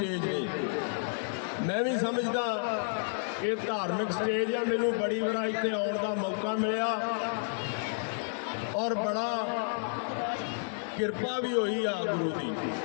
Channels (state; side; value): silent; right; digital silence